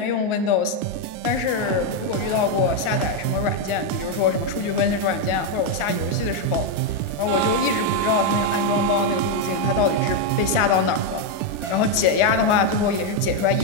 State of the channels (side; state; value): right; late; 1.4 ms